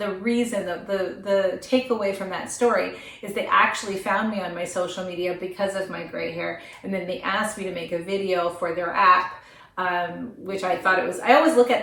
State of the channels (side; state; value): both; identical; correlation 1.00